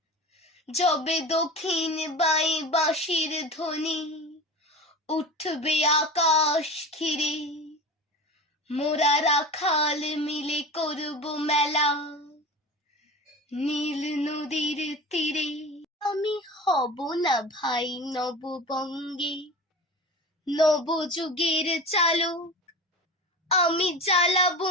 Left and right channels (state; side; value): normal; both; correlation 0.32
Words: যবে দক্ষিণ বাই বাঁশির ধ্বনি উঠবে আকাশ ঘিরে, মোরা রাখাল মিলে করব মেলা নীল নদীর তীরে। আমি হব না ভাই নববঙ্গে নবযুগের চালক, আমি জ্বালাবো